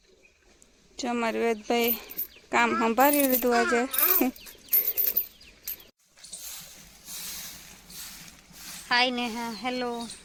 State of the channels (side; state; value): both; identical; correlation 1.00